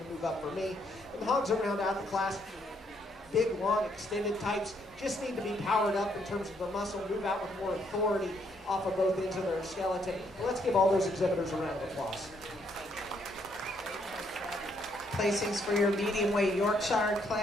move up for me. And the hogs that round out the class, big, long, extended types, just need to be powered up in terms of the muscle, move out with more authority off of both ends of their skeleton. But let's give all those exhibitors a round of applause. Placings for your medium weight Yorkshire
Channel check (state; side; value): normal; both; correlation 0.71